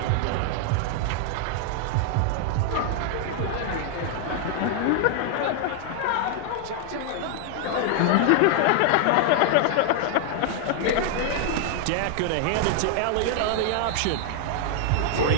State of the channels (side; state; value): both; different; correlation 0.00